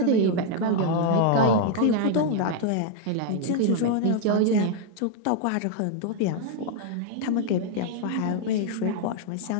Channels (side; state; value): both; different; correlation 0.00